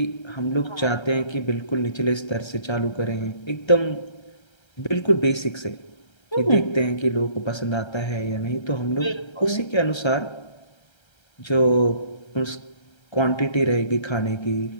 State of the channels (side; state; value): right; late; 1.3 ms